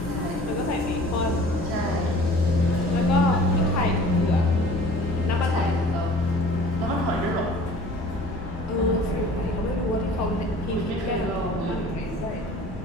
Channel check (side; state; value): both; normal; correlation 0.47